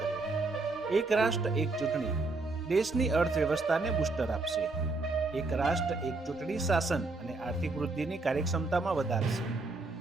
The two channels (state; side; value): quieter; left; 3.4 dB